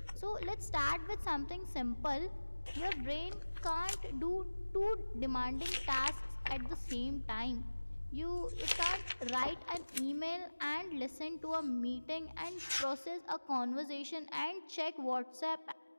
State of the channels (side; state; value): both; inverted; correlation -1.00